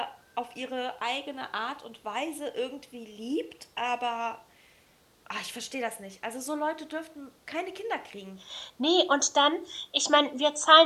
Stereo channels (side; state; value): both; identical; correlation 1.00